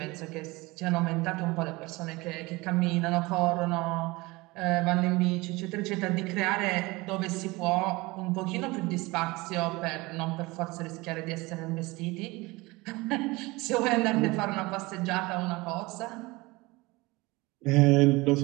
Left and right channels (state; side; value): quieter; left; 22.7 dB